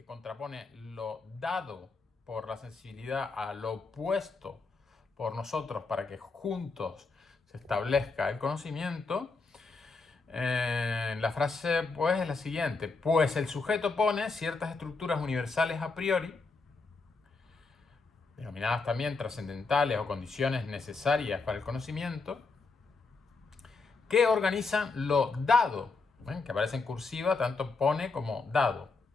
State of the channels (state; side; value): quieter; right; 4.1 dB